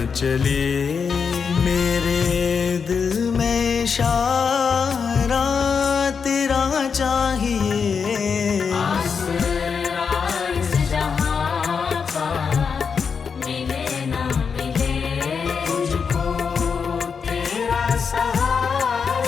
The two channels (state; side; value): quieter; right; 6.0 dB